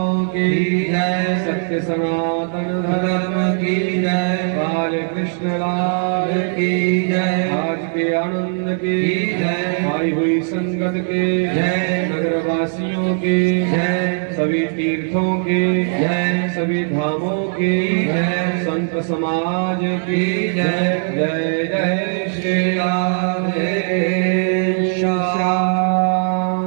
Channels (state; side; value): silent; left; 60 dB below the other